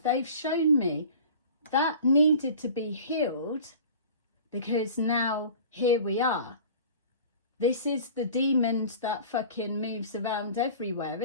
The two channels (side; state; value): both; inverted; correlation -0.42